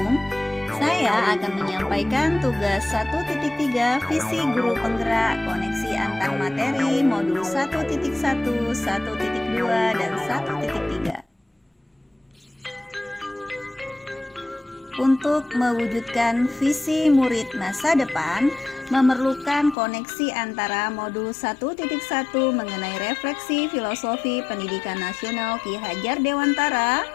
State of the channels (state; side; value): drops out; right; at 19.8 s